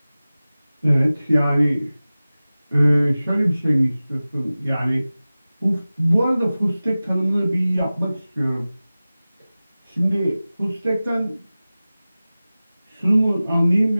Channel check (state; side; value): inverted; both; correlation -0.97